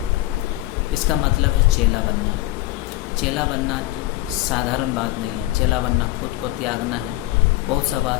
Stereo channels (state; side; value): quieter; right; 17.0 dB